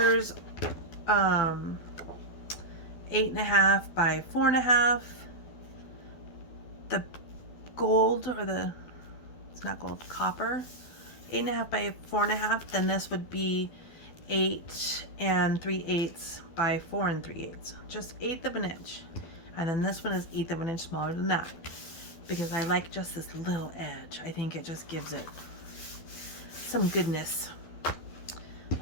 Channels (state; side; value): late; right; 12 ms